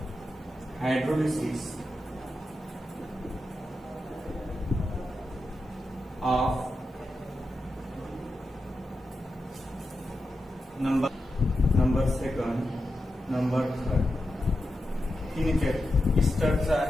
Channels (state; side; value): normal; both; correlation 0.89